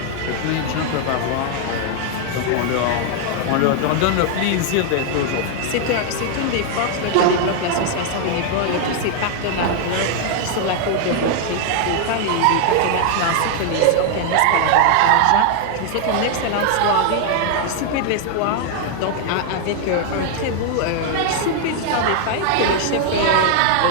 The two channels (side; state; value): both; different; correlation 0.00